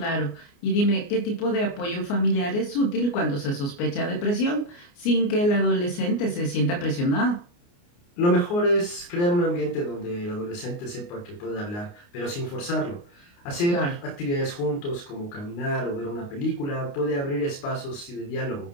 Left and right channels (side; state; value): right; late; 29 ms